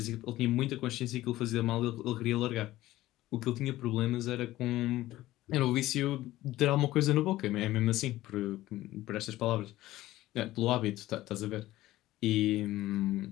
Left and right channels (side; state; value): right; quieter; 16.0 dB